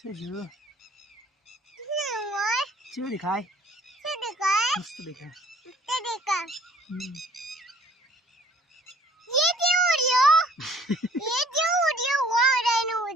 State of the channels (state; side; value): normal; both; correlation 0.55